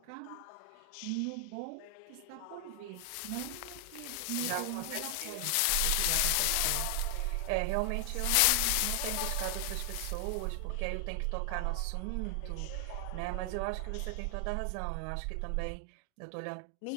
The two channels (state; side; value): different; both; correlation 0.00